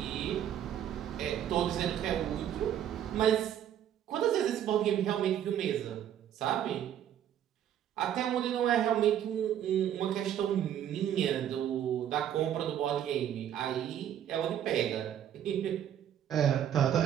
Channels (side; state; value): left; quieter; 10.3 dB